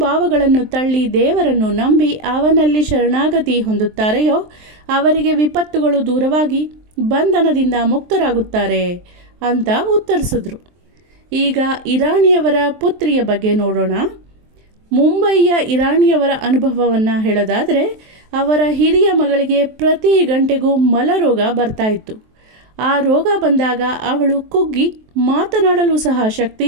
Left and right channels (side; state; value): left; late; 23 ms